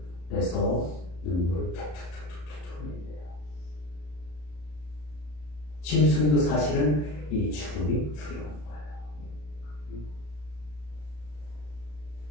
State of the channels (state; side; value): late; right; 34 ms